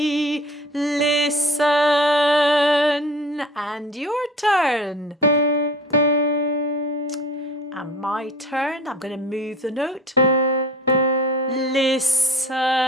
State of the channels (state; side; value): normal; both; correlation 0.41